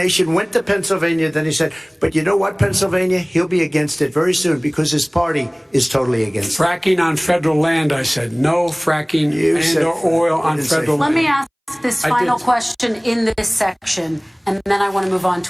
went to Pennsylvania, then he said, but you know what, Pennsylvania? He'll be against it very soon because his party is totally against it. Fracking on federal land, I said. No fracking and or oil on federal land. Let me ask this final question in this section, and then I want to move on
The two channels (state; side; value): identical; both; correlation 1.00